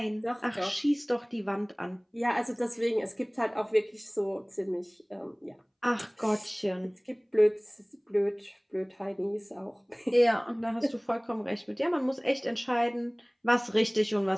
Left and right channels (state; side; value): identical; both; correlation 1.00